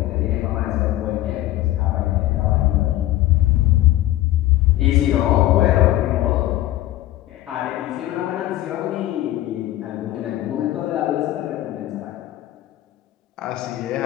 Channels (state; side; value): quieter; right; 15.3 dB